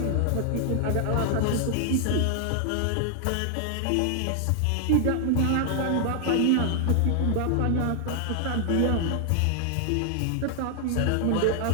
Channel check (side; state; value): both; different; correlation 0.00